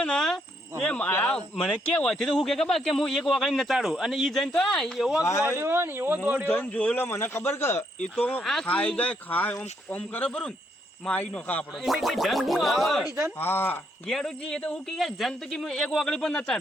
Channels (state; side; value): normal; both; correlation 0.74